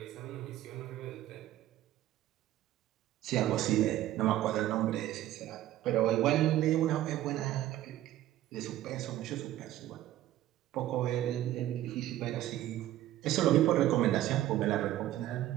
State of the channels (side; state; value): left; quieter; 13.8 dB